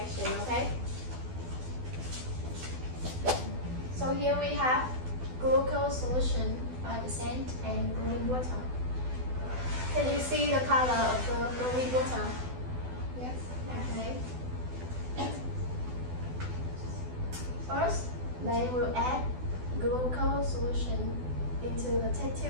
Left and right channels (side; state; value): left; late; 12 ms